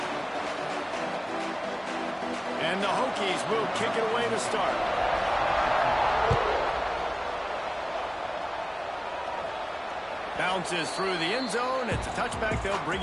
And the Hokies will kick it away to start. Bounces through the end zone. It's a touchback. They'll bring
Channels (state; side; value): identical; both; correlation 1.00